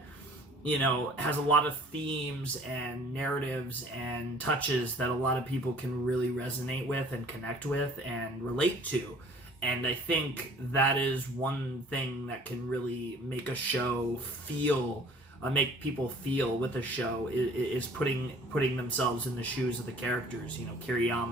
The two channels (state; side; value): normal; both; correlation 0.52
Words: you know, has a lot of themes and narratives and touches that a lot of people can really resonate with and connect with and relate to. And I think that is one thing that can really make a show feel, make people feel with a show, is putting themselves in the shoes of the characters. You know,